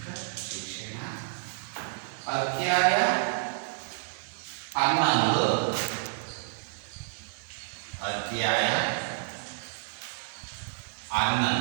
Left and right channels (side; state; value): left; silent; 58 dB below the other